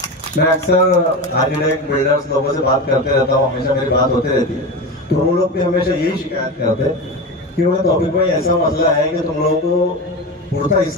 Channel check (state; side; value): normal; both; correlation 0.23